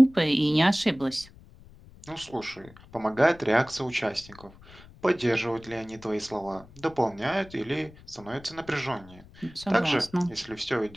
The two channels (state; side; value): noise; left; rumble, 22 dB below the sound